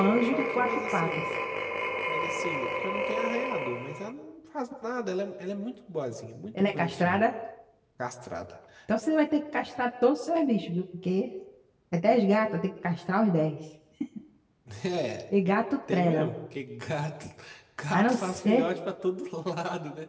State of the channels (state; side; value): identical; both; correlation 1.00